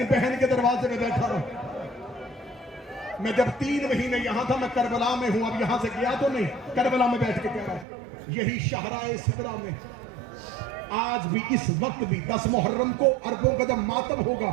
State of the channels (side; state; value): left; drops out; at 7.9 s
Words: بہن کے دروازے میں بیٹھا رہا. میں جب 3 مہینے یہاں تھا، میں کربلا میں ہوں. اب یہاں سے گیا تو نہیں، کربلا میں بیٹھ کے کہہ رہا ہوں. یہی شاہراہ سدرہ میں آج بھی، اس وقت بھی 10 محرم کو اربوں کا جب ماتم ہوگا،